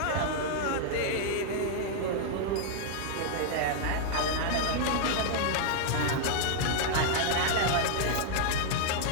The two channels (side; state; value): both; different; correlation -0.01